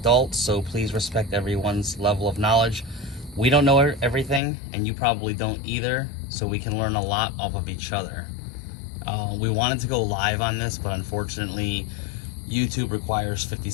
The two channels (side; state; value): right; drops out; at 4.4 s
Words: so please respect everyone's level of knowledge. We don't know everything, and you probably don't either, so we can learn a lot off of each other. We wanted to go live on this, but unfortunately YouTube requires 50